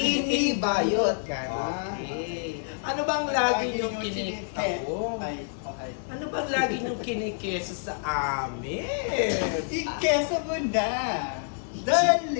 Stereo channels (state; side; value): silent; right; digital silence